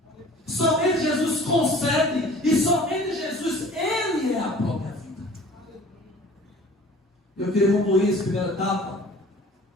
Somente Jesus concede, e somente Jesus, Ele é a própria vida. Eu queria concluir essa primeira etapa,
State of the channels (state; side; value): normal; both; correlation 0.47